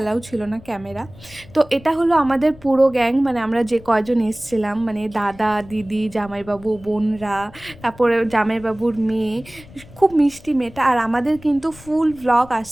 ছিল না ক্যামেরা। তো এটা হলো আমাদের পুরো গ্যাং, মানে আমরা যে কয়জন এসছিলাম, মানে দাদা দিদি জামাইবাবু বোনরা, তারপরে জামাইবাবুর মেয়ে, খুব মিষ্টি মেয়েটা। আর আমাদের কিন্তু ফুল ভ্লগ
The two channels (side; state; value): left; noise; rumble, 21 dB below the sound